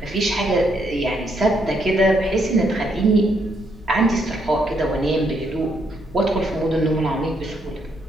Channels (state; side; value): normal; both; correlation 0.74